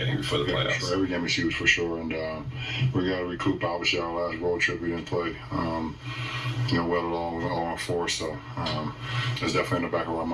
before the playoffs. Sure. Every game is huge for sure, and we got to recoup. Obviously, our last road trip we didn't play. Well along 0-4, so it's definitely in the back of our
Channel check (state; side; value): identical; both; correlation 1.00